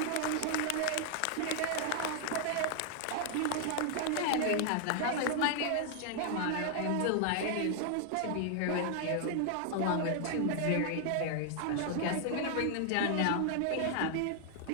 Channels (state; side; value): different; both; correlation 0.00